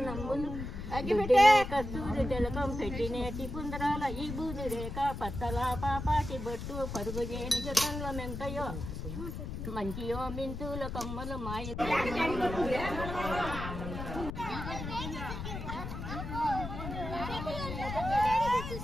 కస్తూరి జలకం పెట్టినేటి పుందరాల ఈ బూది రేఖ పత్తల పాపాటి బొట్టు పరుగు చేని జతంల మెంతయో మంచియో మింతుల కమ్మలు మాయ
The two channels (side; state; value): left; noise; rumble, 6 dB below the sound